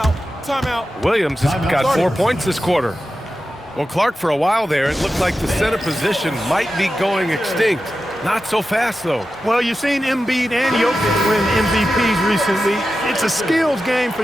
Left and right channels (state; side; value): normal; both; correlation 0.92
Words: Williams has got 4 points this quarter. Well, Clark, for a while there, it looked like the center position might be going extinct. Not so fast, though. Well, you've seen Embiid and Jokic win MVPs recently. It's a skills game for